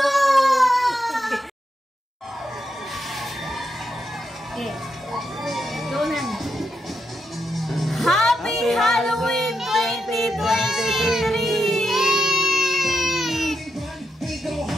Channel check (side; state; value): both; normal; correlation 0.83